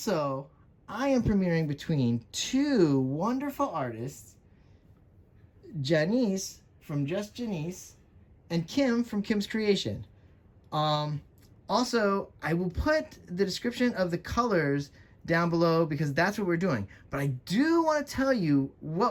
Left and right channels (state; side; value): identical; both; correlation 1.00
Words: I am premiering between two wonderful artists, Janice from Just Janice and Kim from Kim's Creation. Also, I will put the description of the colors down below because that's what we're doing. But I do want to tell you